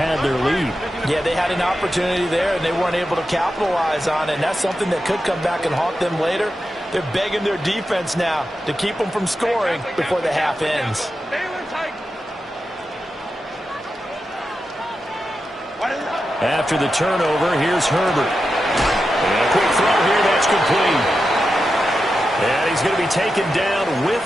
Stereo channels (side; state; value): both; normal; correlation 0.90